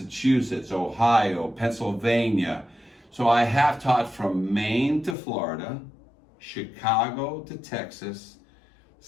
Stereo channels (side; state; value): right; drops out; at 5.2 s